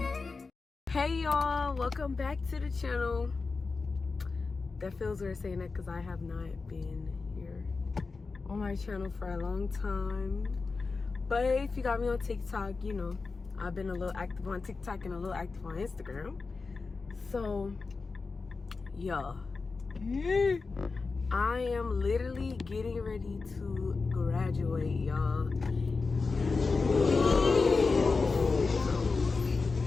hey y'all, welcome back to the channel. That feels weird saying that because I have not been here on my channel for a long time. But if you got me on TikTok, you know, I've been a little active on TikTok and a little active on Instagram. So, yeah. I am literally getting ready to graduate, y'all.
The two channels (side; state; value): right; quieter; 4.2 dB